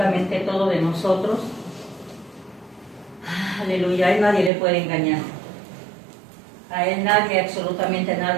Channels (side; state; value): left; drops out; at 4.5 s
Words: todo de nosotros. Aleluya, a Él nadie le puede engañar. A Él nadie, absolutamente